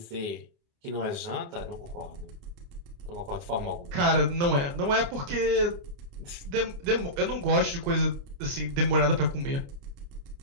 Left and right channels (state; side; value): late; left; 29 ms